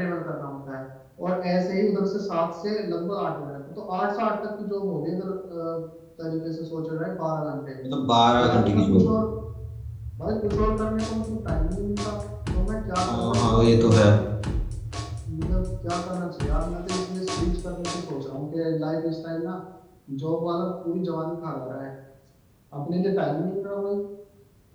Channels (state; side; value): identical; both; correlation 1.00